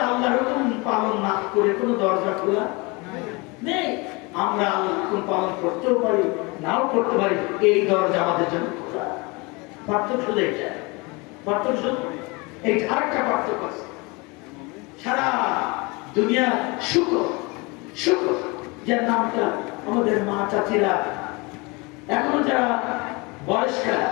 আল্লাহর হুকুম পালন না করে কোনো দরজা খোলা নেই। আমরা আল্লাহর হুকুম পালন করতেও পারি, নাও করতে পারি, এই দরজা আমাদের জন্য খোলা। পার্থক্য শুধু এটা, পার্থক্য শুধু এই আরেকটা পার্থক্য আছে। সারা দুনিয়া শুকর, শুকর যার নামটা আমাদের মা চাচিরা এখনো যারা বয়স্কার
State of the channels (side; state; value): right; quieter; 26.9 dB